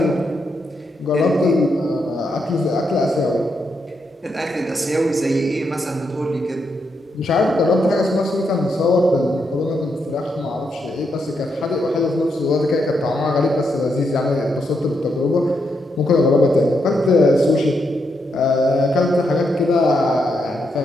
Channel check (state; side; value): normal; both; correlation 0.81